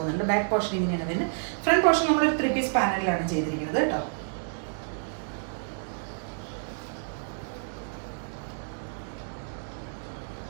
ബാക്ക് പോർഷൻ ഇങ്ങനെയാണ് വരുന്നത്. ഫ്രണ്ട് പോർഷൻ നമ്മൾ ഒരു 3 പീസ് പാനലിലാണ് ചെയ്തിരിക്കുന്നത് കേട്ടോ.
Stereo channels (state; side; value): silent; left; 59 dB below the other